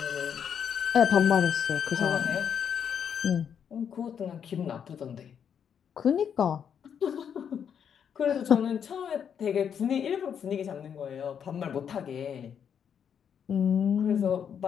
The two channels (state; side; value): quieter; right; 7.9 dB